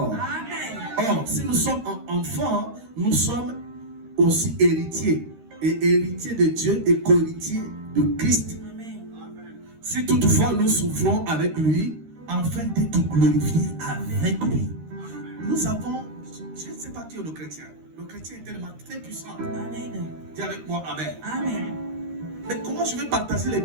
Amen. Or, si nous sommes enfants, nous sommes aussi héritiers. Et héritiers de Dieu et co-héritiers de Christ. Amen. Si toutefois nous souffrons avec lui, afin d'être glorifiés avec lui. Nous avons, je ne sais pas qui est le chrétien. Le chrétien est tellement très puissant. Amen. Dis avec moi amen. Amen. Mais comment je vais partager les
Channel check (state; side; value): late; left; 13 ms